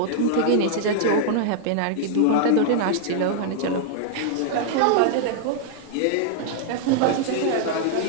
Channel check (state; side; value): different; both; correlation -0.01